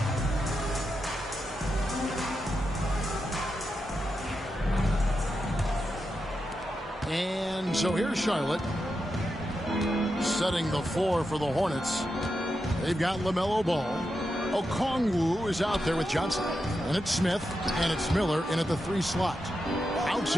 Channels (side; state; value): both; normal; correlation 0.87